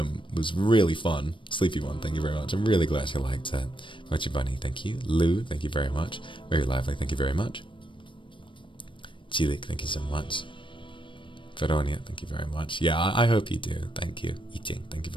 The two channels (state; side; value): late; right; 0.24 ms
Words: was really fun. Sleepy one, thank you very much. I'm really glad you liked it. Mochi Bunny, thank you. Lou, thank you very much. Very lively, thank you very much. Chilik, thank you so much. Veronia, thank you very much. Yeah, I hope you do. Thank you. Eating, thank you